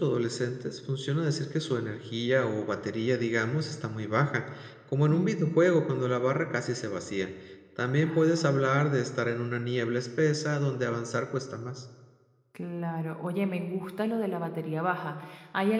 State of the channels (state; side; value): identical; both; correlation 1.00